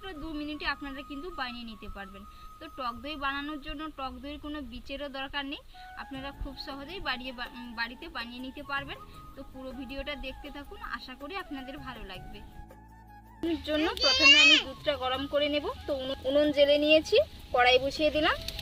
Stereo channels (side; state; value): both; identical; correlation 1.00